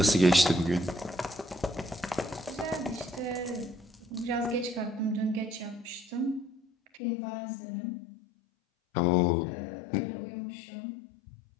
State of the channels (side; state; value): right; drops out; at 7.0 s